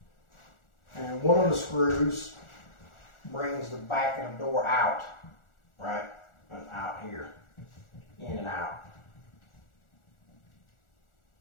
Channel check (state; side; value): late; right; 1.4 ms